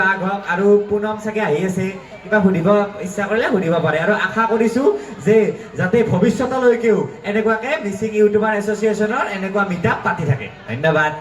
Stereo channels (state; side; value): identical; both; correlation 1.00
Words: বাঘ হওক আৰু পুনম চাগে আহি আছে কিবা সুধিব ইচ্ছা কৰিলে সুধিব পাৰে আৰু আশা কৰিছোঁ যে যাতে ভৱিষ্যতলৈকেও এনেকুৱাকৈ মিচিং ইউটিউবাৰ এছ'চিয়েশ্যনৰ এনেকুৱা মিটআপ পাতি থাকে ধন্যবাদ